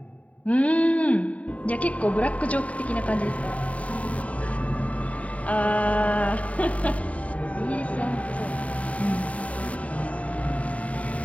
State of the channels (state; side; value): late; right; 0.067 ms